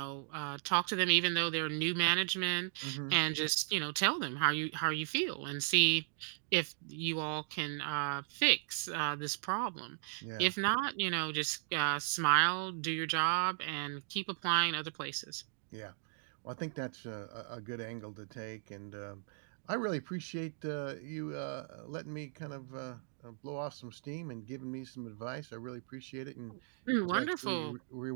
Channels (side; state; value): left; silent; digital silence